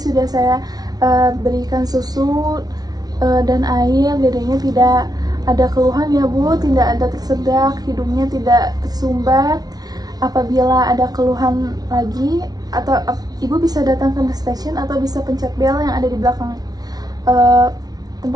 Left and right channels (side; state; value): left; late; 0.19 ms